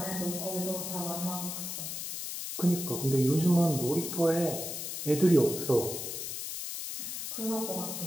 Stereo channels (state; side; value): noise; left; hiss, 5 dB below the sound